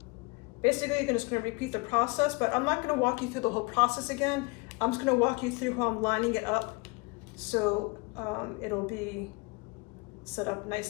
basically you're just going to repeat the process, but I'm not going to walk you through the whole process again. I'm just going to walk you through how I'm lining it up so it'll be set up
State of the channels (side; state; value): right; quieter; 27.8 dB